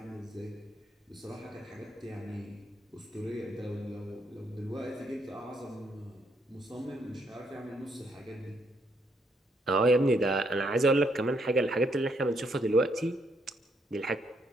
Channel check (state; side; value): normal; both; correlation 0.74